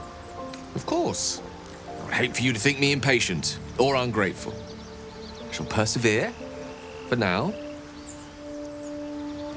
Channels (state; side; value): identical; both; correlation 1.00